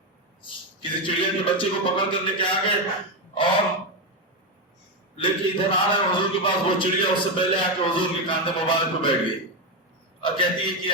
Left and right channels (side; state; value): both; normal; correlation 0.09